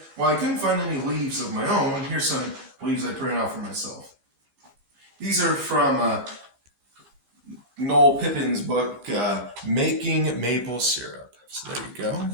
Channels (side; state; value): left; late; 15 ms